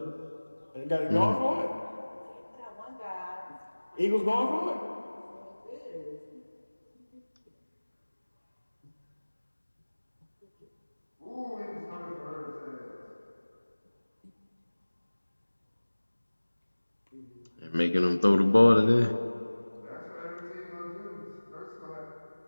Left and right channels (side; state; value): both; inverted; correlation -1.00